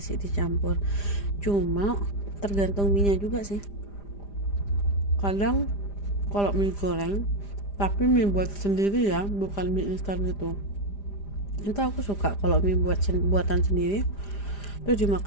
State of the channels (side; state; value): right; late; 5.0 ms